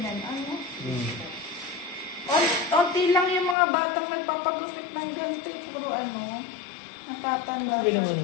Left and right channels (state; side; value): drops out; right; at 3.6 s